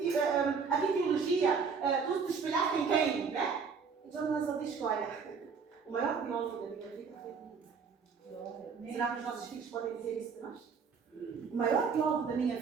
que teologia, tu te espelhaste em quem, né? E John Wesley diz que, olha, o maior teólogo da minha vida foi comigo. Será que os nossos filhos podem dizer isso de nós? O maior teólogo da minha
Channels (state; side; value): quieter; left; 5.6 dB